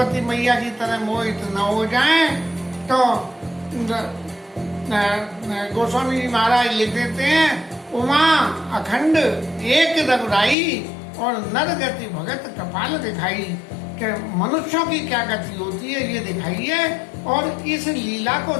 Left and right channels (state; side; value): drops out; right; at 10.6 s